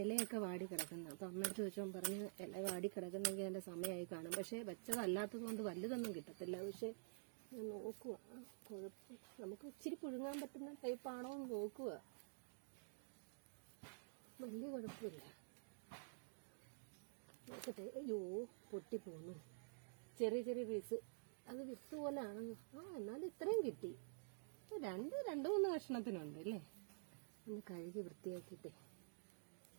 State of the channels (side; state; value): left; silent; digital silence